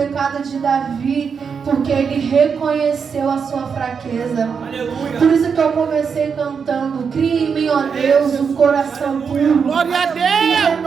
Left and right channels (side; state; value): left; quieter; 6.2 dB